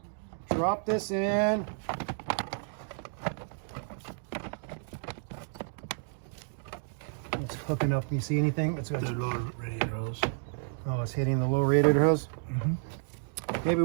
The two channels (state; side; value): silent; left; digital silence